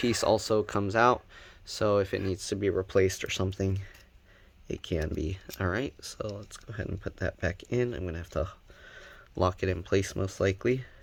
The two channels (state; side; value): identical; both; correlation 1.00